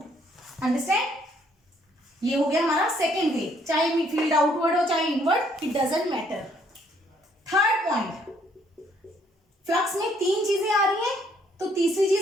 Understand, ये हो गया हमारा सेकेंड वे, चाहे फील्ड आउटवर्ड हो चाहे inward, it doesn't matter. Third point, flux में 3 चीजें आ रही हैं, तो तीसरी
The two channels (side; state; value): both; normal; correlation 0.66